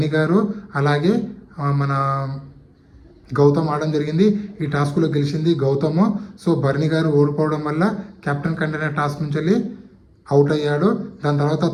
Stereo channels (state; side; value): identical; both; correlation 1.00